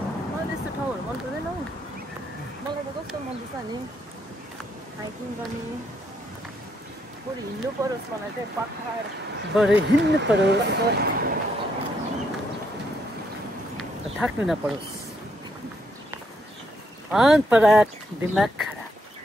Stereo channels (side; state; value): both; normal; correlation 0.75